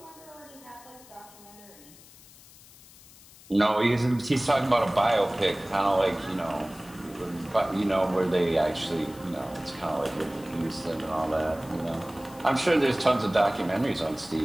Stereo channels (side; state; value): left; noise; hiss, 22 dB below the sound